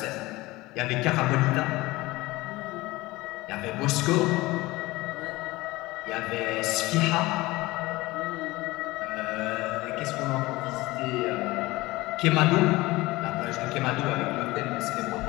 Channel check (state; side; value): quieter; right; 20.2 dB